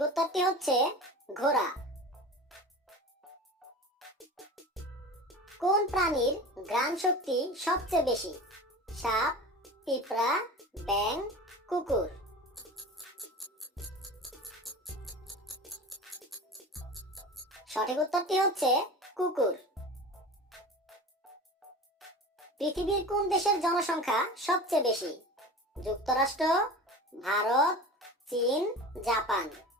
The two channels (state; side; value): normal; both; correlation 0.34